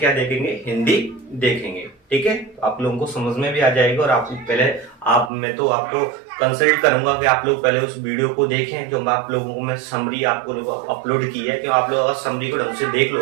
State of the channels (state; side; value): drops out; left; at 5.3 s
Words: देखेंगे, हिंदी देखेंगे। ठीक है, तो आप लोगों को समझ में भी आ जाएगा। और आप पहले मैं तो आपको कंसल्ट करूंगा कि आप लोग पहले उस वीडियो को देखें जो आप लोगों को मैं समरी आपको अपलोड की है, कि आप लोग अगर समरी को ढंग से देख